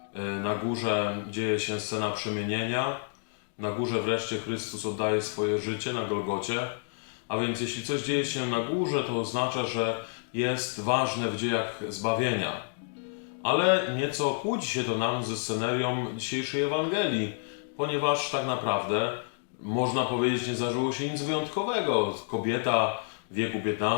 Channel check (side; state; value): right; silent; digital silence